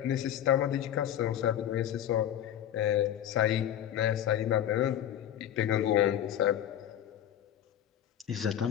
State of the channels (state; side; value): quieter; right; 10.8 dB